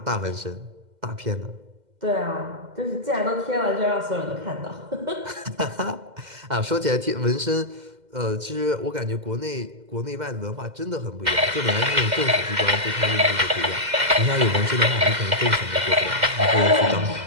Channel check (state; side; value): late; left; 2.0 ms